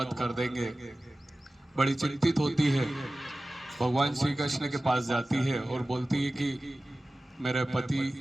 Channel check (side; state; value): both; normal; correlation 0.96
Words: कर देंगे। बड़ी चिंतित होती है। भगवान श्री कृष्ण के पास जाती है और बोलती है कि मेरे